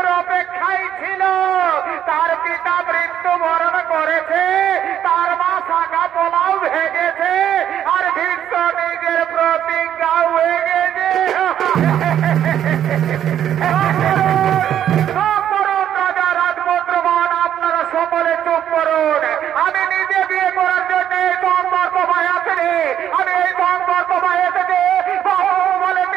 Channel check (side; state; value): left; quieter; 10.3 dB